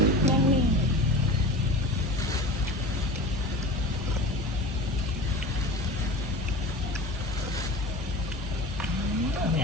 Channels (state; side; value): normal; both; correlation 0.34